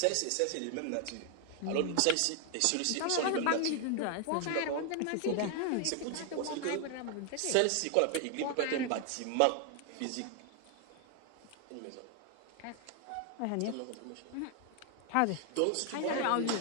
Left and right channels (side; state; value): both; different; correlation 0.00